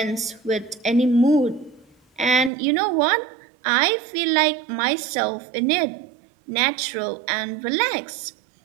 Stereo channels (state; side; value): drops out; left; at 2.5 s